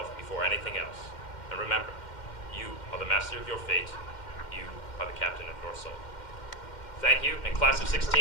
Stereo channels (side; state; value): right; late; 2.1 ms